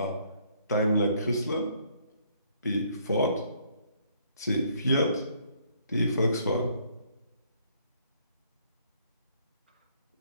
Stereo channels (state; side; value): inverted; both; correlation -0.66